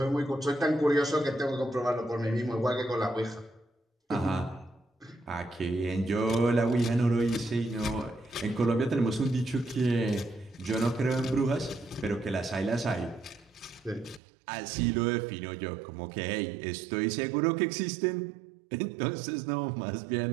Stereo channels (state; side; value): drops out; left; at 14.2 s